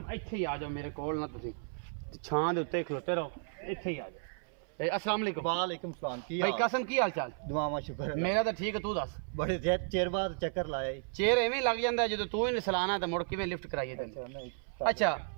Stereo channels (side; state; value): left; silent; 55 dB below the other